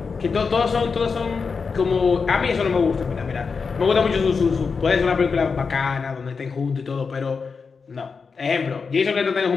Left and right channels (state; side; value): quieter; right; 5.2 dB